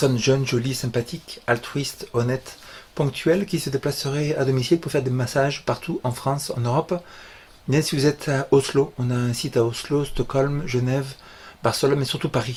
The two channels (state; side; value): identical; both; correlation 1.00